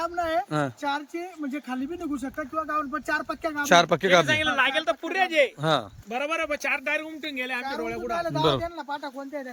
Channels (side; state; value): both; identical; correlation 1.00